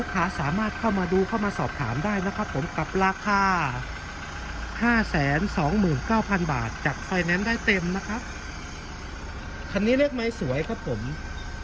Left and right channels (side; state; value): both; identical; correlation 1.00